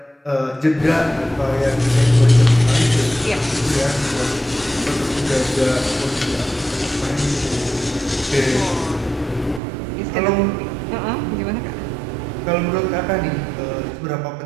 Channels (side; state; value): left; drops out; at 9.6 s